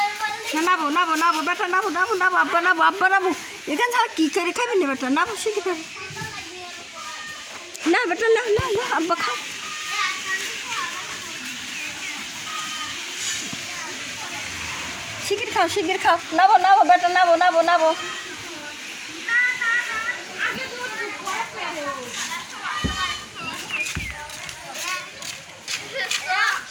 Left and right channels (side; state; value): both; identical; correlation 1.00